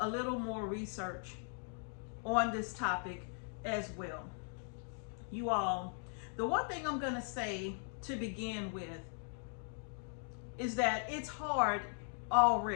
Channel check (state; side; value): silent; right; 52 dB below the other